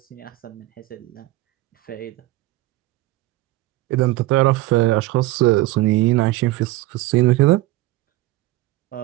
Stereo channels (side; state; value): left; quieter; 17.7 dB